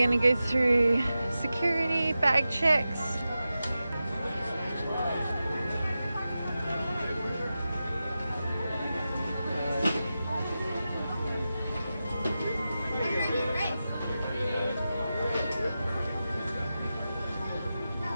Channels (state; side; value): inverted; both; correlation -0.92